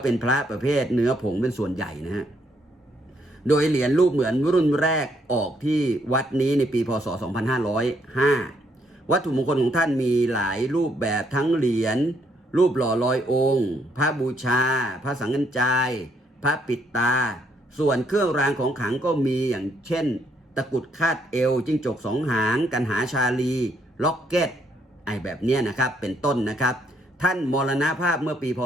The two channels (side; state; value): both; normal; correlation 0.72